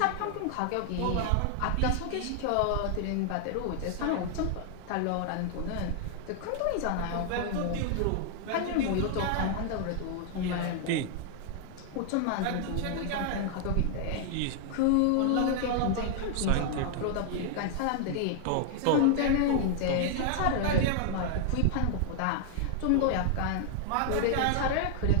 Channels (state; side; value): different; both; correlation 0.00